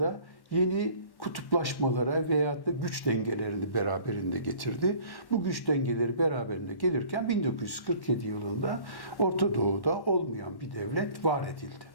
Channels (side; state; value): right; late; 1.1 ms